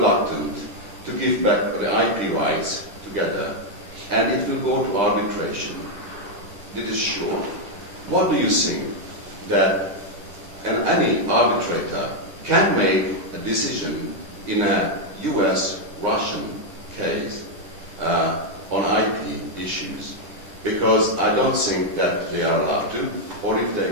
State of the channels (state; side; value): late; left; 9.9 ms